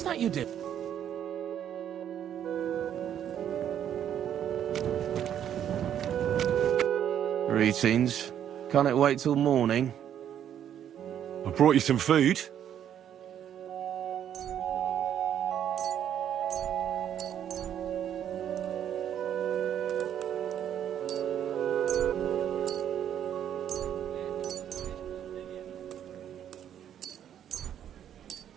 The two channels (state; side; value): quieter; left; 9.9 dB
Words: that you did? Greetings. Can't it wait till morning? I brought you some food.